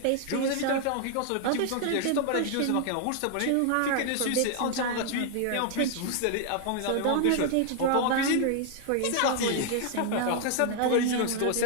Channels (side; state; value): both; different; correlation 0.00